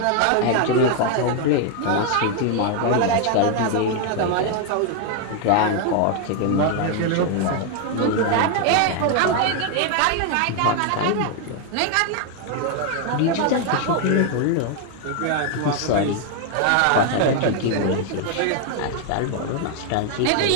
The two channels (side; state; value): both; different; correlation 0.00